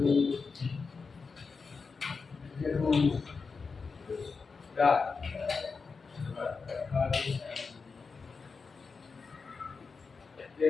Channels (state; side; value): quieter; right; 4.8 dB